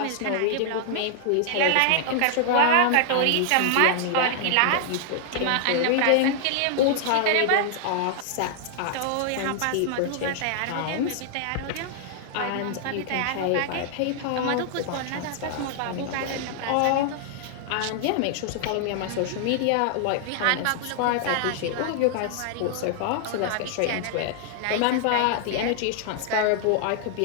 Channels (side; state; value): both; different; correlation 0.00